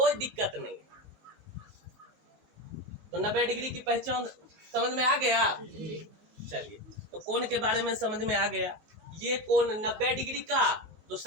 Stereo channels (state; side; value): late; left; 19 ms